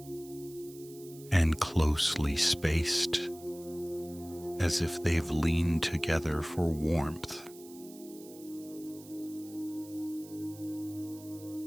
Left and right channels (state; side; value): noise; right; hiss, 20 dB below the sound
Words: and closely spaced, as if they've leaned together for warmth.